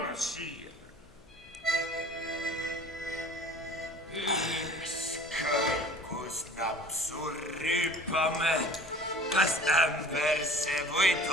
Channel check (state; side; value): noise; left; hum, 25 dB below the sound